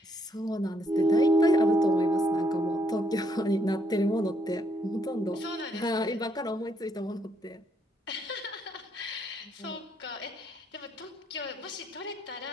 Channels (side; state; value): both; normal; correlation 0.72